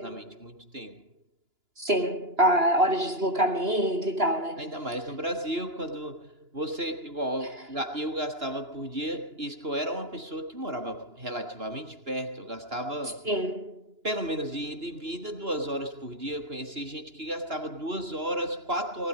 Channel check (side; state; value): left; late; 2.9 ms